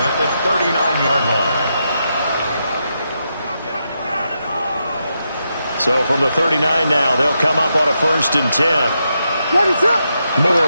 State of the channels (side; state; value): both; inverted; correlation -0.84